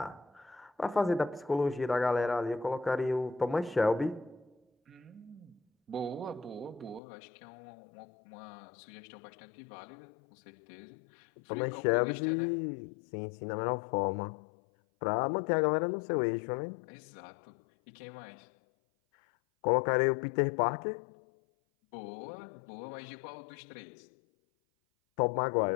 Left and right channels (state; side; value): drops out; right; at 7.0 s